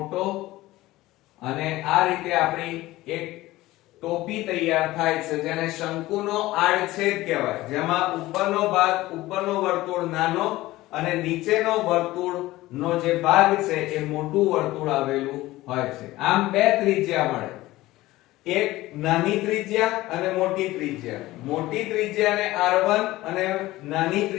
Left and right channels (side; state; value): right; quieter; 17.6 dB